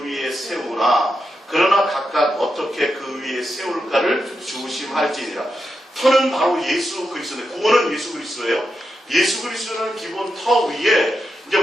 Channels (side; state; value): both; normal; correlation 0.87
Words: 위에 세우나 그러나 각각 어떻게 그 위에 세울까를 주심할지니라. 터는 바로 예수 그리스도인데 구원은 예수 그리스도예요. 예수 그리스도는 기본 터 위에 이제